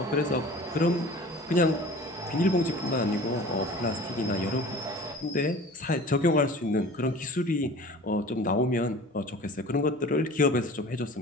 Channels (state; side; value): normal; both; correlation 0.42